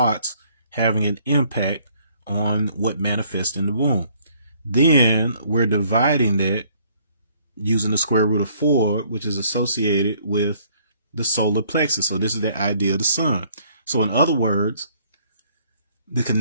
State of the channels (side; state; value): both; inverted; correlation -0.63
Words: having an impact on what manifests in the womb. Then we're dividing that using the square root of 4, which is associated with the solar plexus. So this is the idea of the sun. So in other words, the